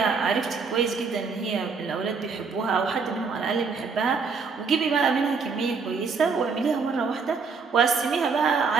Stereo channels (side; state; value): left; quieter; 5.1 dB